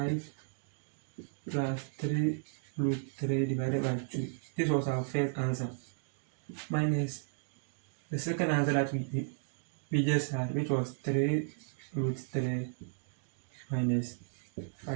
plus 3 root 3 divided by 2. This was our first answer. Minus the second answer that we just had, which was 3 root 3 minus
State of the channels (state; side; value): silent; left; digital silence